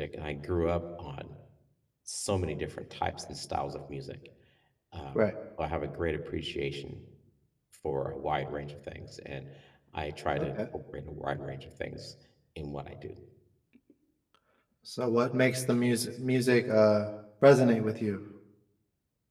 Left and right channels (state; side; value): identical; both; correlation 1.00